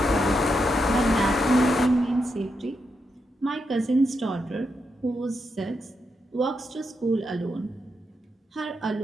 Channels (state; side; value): normal; both; correlation 0.83